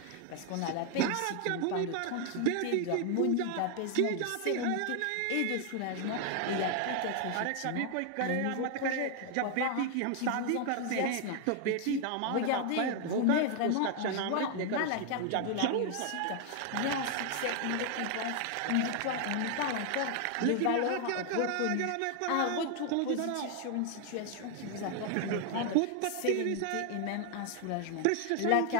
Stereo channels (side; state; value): both; different; correlation 0.00